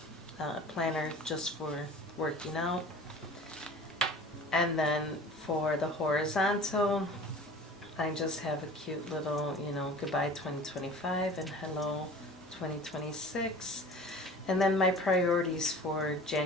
planner just for working out. And then for the horizontal, I just have a cute little, you know, goodbye 2025 and hello 2026. And then my priorities for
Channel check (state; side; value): normal; both; correlation 0.42